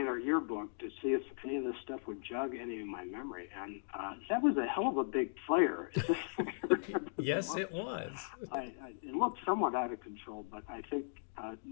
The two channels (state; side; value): silent; right; digital silence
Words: at our yearbook to see if any of this stuff would jog any of my memory, and that was a hell of a big fire. Yes, it was. It looked somewhat out of control, but I think